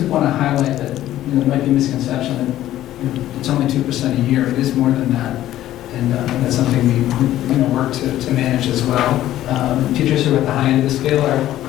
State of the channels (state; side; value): quieter; right; 13.5 dB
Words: want to highlight that there might be a misconception that it's only 2% a year. It is more than that. And that's something we work to manage as well. Teachers who are at the high end of the scale are